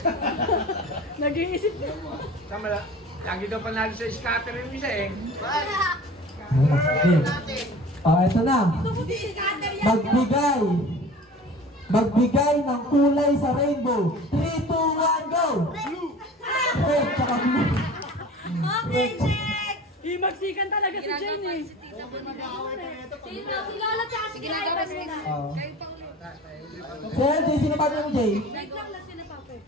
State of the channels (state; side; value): normal; both; correlation 0.40